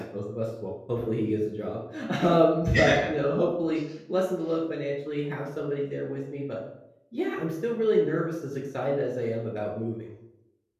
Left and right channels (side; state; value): both; identical; correlation 1.00